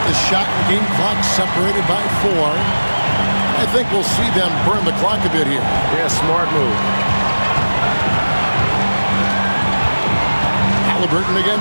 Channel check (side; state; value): both; inverted; correlation -1.00